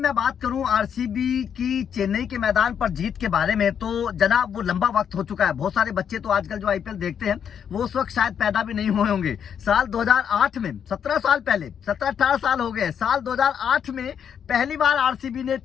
बात करूं आरसीबी की चेन्नई के मैदान पर जीत के बारे में, तो जनाब वो लंबा वक्त हो चुका है। बहुत सारे बच्चे तो आजकल जो आईपीएल देखते हैं वो उस वक्त शायद पैदा भी नहीं हुए होंगे। साल 2008 में 17 साल पहले, 17-18 साल हो गए, साल 2008 में पहली बार आरसीबी ने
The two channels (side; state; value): right; quieter; 8.1 dB